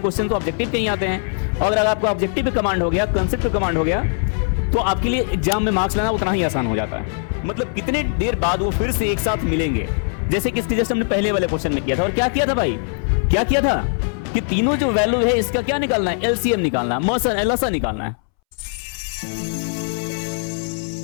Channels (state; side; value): silent; right; 65 dB below the other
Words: क्वेश्चन तो ऑब्जेक्टिव के ही आते हैं। अगर आपको ऑब्जेक्टिव पे कमांड हो गया, कंसेप्ट पे कमांड हो गया, तो आपके लिए एग्जाम में मार्क्स लाना उतना ही आसान हो जाता है। मतलब कितने देर बाद वो फिर से एक साथ मिलेंगे, जैसे कि इसके जैसे हमने पहले वाले क्वेश्चन में किया था। और क्या किया था भाई, क्या किया था कि तीनों जो वैल्यू है इसका क्या निकालना है, एलसीएम निकालना है, मौसा एलओसा निकालना है।